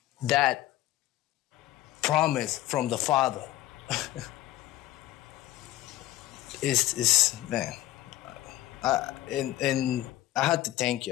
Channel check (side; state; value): right; quieter; 15.3 dB